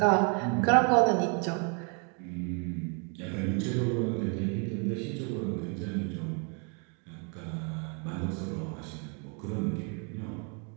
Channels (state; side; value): quieter; left; 37.2 dB